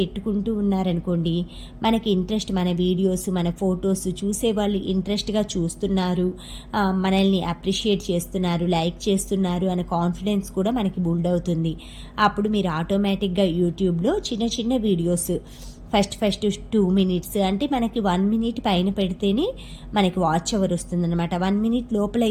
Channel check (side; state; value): both; identical; correlation 1.00